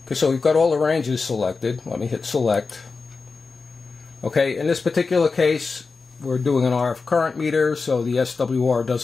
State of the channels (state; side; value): quieter; right; 4.4 dB